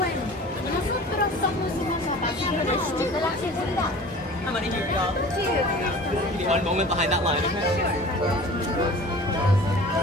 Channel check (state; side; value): normal; both; correlation 0.42